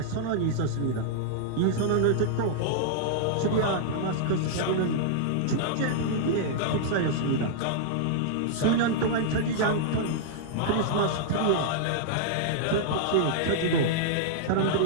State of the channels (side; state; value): both; different; correlation -0.01